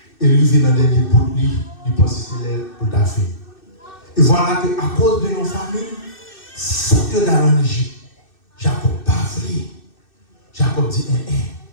et il vit dans des derniers bouts, il pense que c'est décidé pour ta fille. Et voilà que à cause de nos familles, faut que dans l'Égypte, Jacob pas voulu. Jacob dit,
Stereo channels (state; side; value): late; right; 2.6 ms